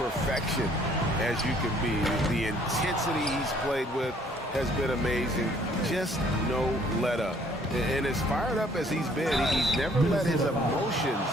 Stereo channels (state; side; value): normal; both; correlation 0.60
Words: as you can be. The intensity he's played with has been amazing. Just no let up. And as fired up as he's been, he's never let his emotions